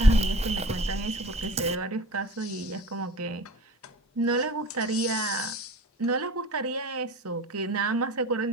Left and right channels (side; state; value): both; normal; correlation 0.40